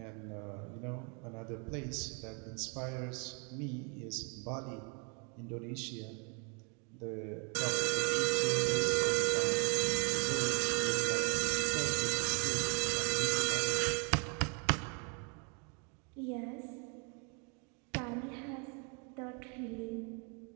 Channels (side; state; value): left; quieter; 32.6 dB